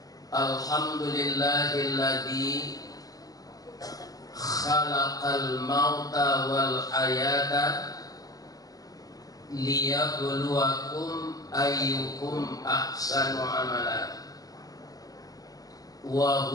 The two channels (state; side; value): late; right; 0.18 ms